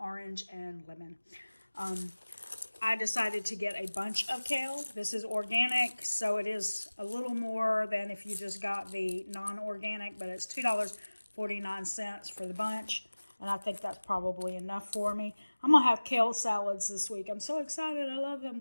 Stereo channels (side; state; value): both; inverted; correlation -1.00